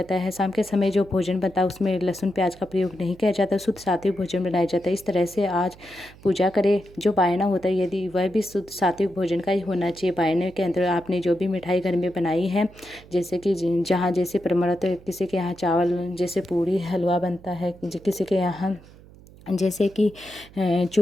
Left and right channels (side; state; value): right; noise; hum, 22 dB below the sound